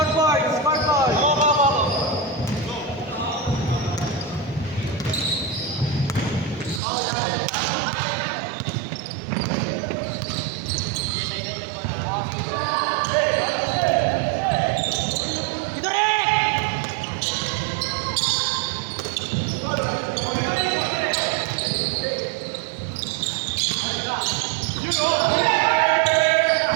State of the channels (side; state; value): left; drops out; at 6.8 s